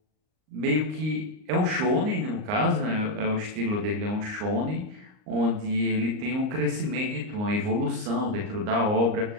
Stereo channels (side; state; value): left; late; 38 ms